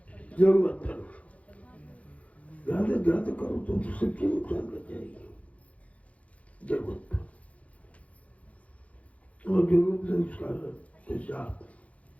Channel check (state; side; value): late; right; 0.066 ms